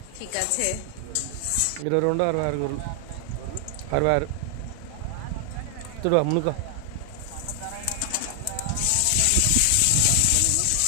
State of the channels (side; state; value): both; different; correlation 0.00